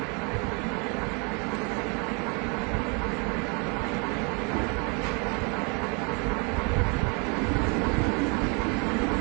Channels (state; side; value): quieter; left; 33.1 dB